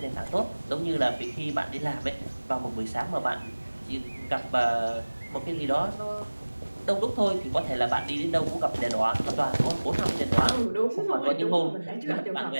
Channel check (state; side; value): inverted; both; correlation -1.00